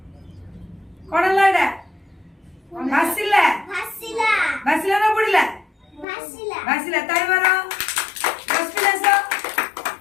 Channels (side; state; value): right; drops out; at 6.1 s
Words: कोन लाडा भासिला भासिला भासिला ना बुडीला भासिला भासिला ताई मारो बसपिलास